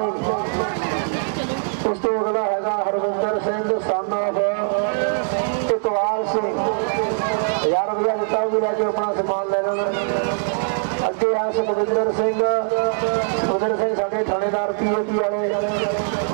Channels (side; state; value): left; silent; digital silence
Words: उस तो अगला है हरविंदर सिंह सन ऑफ इकबाल सिंह 1000 रुपया दिता भी लैके अपना समान ले लेना। अगे है सुखविंदर सिंह साढ़े थानेदार PAP वाले